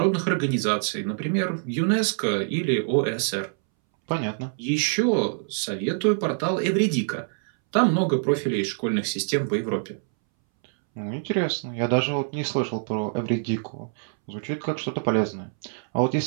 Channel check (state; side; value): silent; left; 62 dB below the other